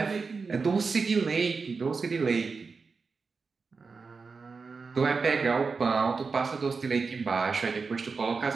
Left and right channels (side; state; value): left; quieter; 4.7 dB